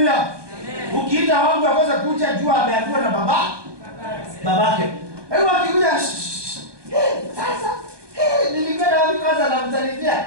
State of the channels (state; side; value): late; left; 1.2 ms